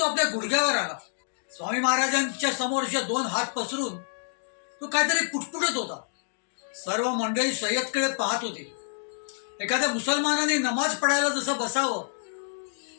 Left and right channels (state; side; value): silent; right; digital silence